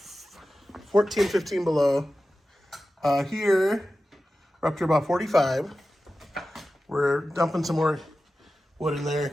14, 15 below. Here we're up to about 45. We're dumping some more wood in there,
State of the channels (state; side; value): normal; both; correlation 0.94